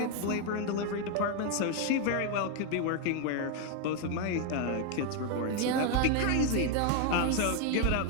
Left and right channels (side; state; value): both; different; correlation 0.01